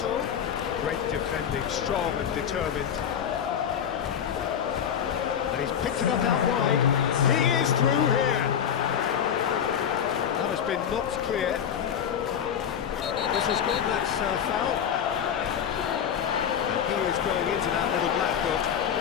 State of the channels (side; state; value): right; quieter; 8.5 dB